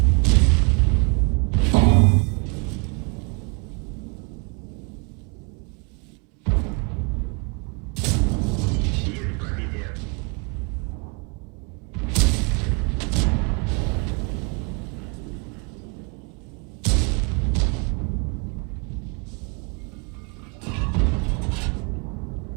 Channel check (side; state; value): left; quieter; 33.6 dB